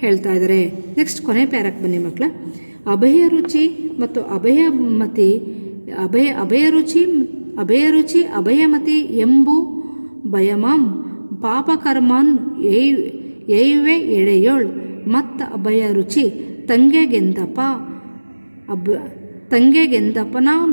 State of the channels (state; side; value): inverted; both; correlation -1.00